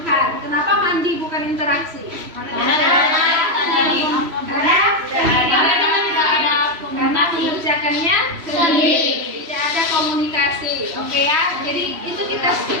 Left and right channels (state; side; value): late; left; 3.0 ms